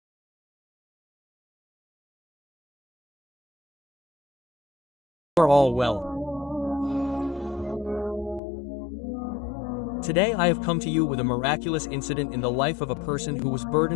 You are all well. Today I have come to you with a miraculous incident in the life of a person who was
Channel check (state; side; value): drops out; right; at 8.4 s